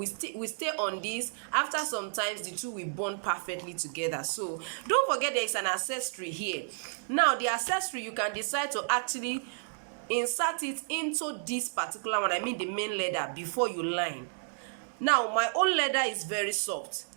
stay on this. After some times, the two will bond perfectly together. So don't forget there is an accessory here. Now the accessory, you can decide to actually insert it into this particular one, I mean the main leather, before you line. Now my own leather is very soft.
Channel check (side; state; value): left; silent; digital silence